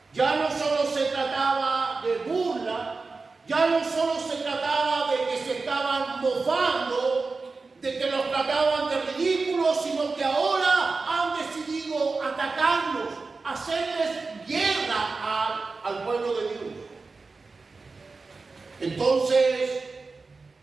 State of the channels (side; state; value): left; quieter; 4.0 dB